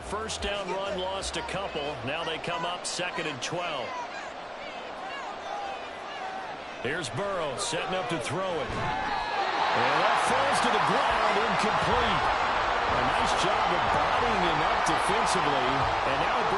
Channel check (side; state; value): both; identical; correlation 1.00